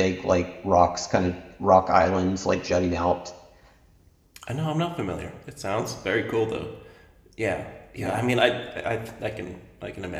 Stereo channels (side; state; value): both; identical; correlation 1.00